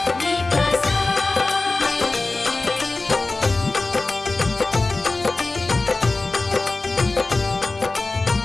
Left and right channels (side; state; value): right; quieter; 3.3 dB